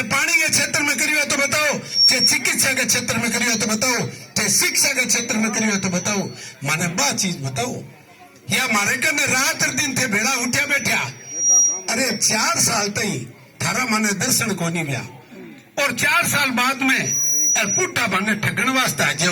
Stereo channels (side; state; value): both; identical; correlation 1.00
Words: पानी के क्षेत्र में करियो तो बताओ, ते चिकित्सा के क्षेत्र में करियो तो बताओ, ते शिक्षा के क्षेत्र में करियो तो बताओ। माने बा चीज बताओ। या मारे कने रात दिन थे भेड़ा उठ्या बैठा। अरे 4 साल तई थारा माने दर्शन को नहीं गया और 4 साल बाद में पुट्टा बने ठगण वास्ते आ